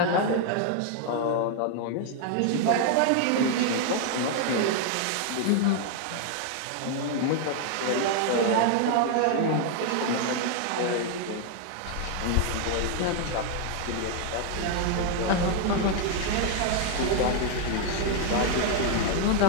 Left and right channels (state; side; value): different; both; correlation 0.00